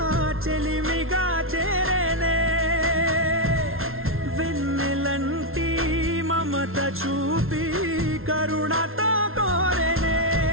చెలిమిగా చేరేనే వెన్నెలంటి మమత చూపి కరుణతో కోరేనే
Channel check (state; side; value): late; left; 0.61 ms